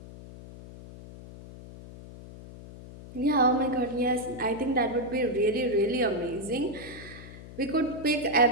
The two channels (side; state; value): left; noise; hum, 16 dB below the sound